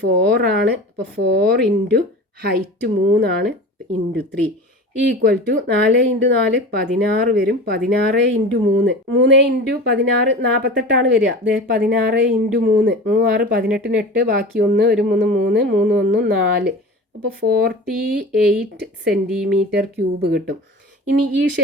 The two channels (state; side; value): normal; both; correlation 0.34